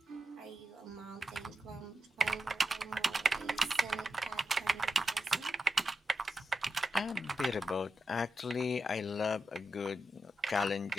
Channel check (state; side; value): normal; both; correlation 0.88